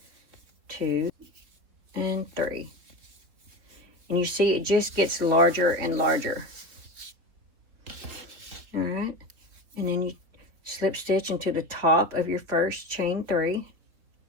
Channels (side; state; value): left; late; 4.0 ms